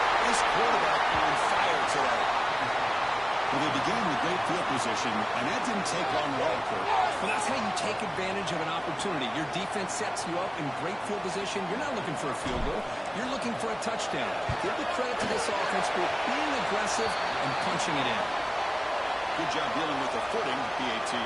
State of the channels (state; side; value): identical; both; correlation 1.00